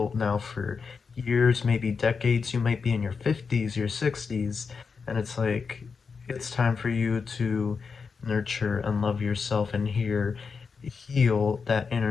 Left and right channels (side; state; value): right; quieter; 5.3 dB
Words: now for years, maybe decades. You might be in your 50s, your 60s, and it's like it's time for you to nurture and love yourself and heal that